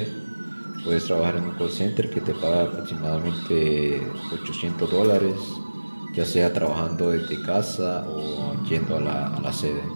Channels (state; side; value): inverted; both; correlation -1.00